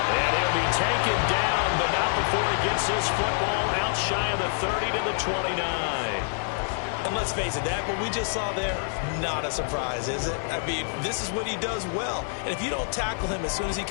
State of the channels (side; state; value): right; silent; 60 dB below the other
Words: And he'll be taken down, but not before he gets this football out shy of the 30 to the 29. And let's face it, that what we just saw there, not a surprise, is it? I mean, this is what he does well. And if you don't tackle him as soon as he